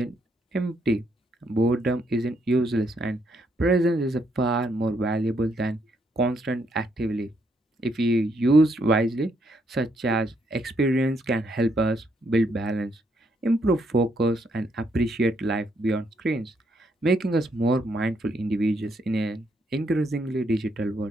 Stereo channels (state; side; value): normal; both; correlation 0.74